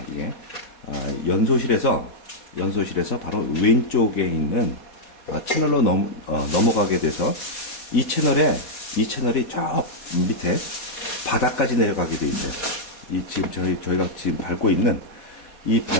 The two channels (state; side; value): late; right; 4.2 ms